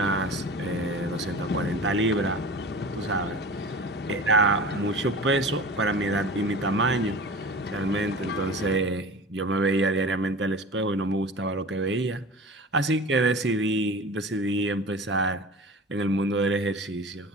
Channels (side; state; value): both; normal; correlation 0.36